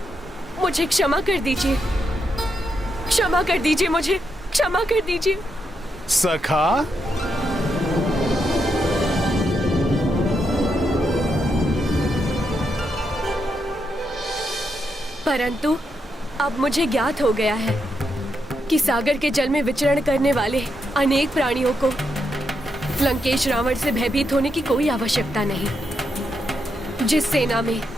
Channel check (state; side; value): normal; both; correlation 0.82